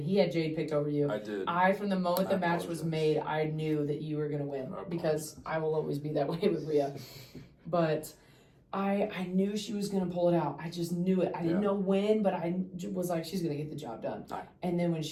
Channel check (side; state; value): both; identical; correlation 1.00